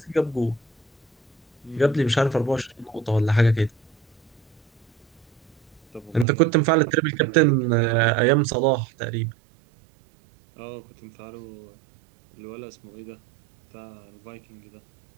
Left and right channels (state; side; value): drops out; left; at 6.2 s